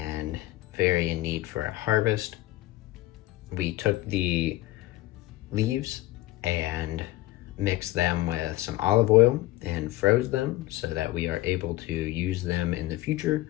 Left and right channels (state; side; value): quieter; right; 17.6 dB